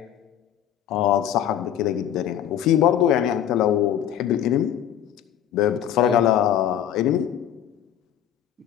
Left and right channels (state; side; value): quieter; right; 10.3 dB